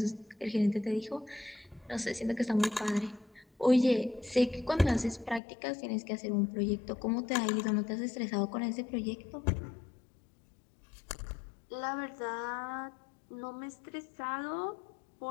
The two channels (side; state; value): right; drops out; at 5.4 s